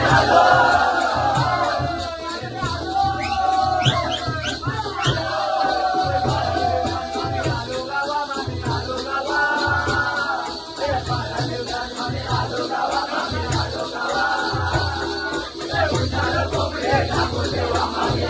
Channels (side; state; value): both; identical; correlation 1.00